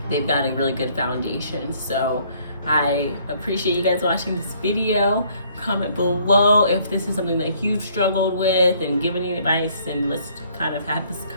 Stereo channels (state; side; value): inverted; both; correlation -0.63